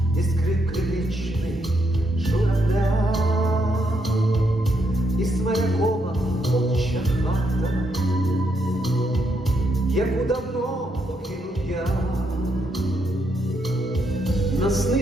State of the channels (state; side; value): normal; both; correlation 0.78